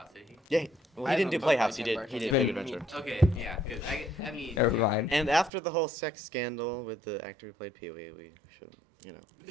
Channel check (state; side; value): drops out; left; at 5.5 s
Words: did he? Yeah, well I he didn't do haven't played Playhouse. He Tim did Burton. Big Been- Adventure. Okay, yeah, because I mean. Never mind. And after the whole sex scandal with the actor who played Pee-wee, we should,